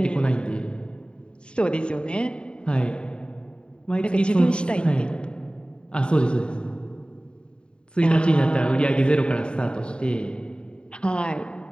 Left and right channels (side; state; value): right; late; 0.052 ms